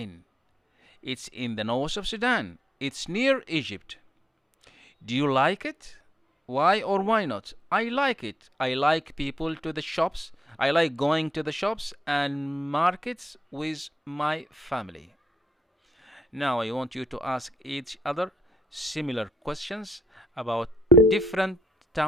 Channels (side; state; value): both; normal; correlation 0.78